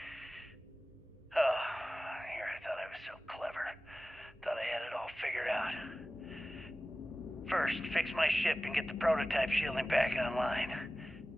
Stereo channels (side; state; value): both; normal; correlation 0.96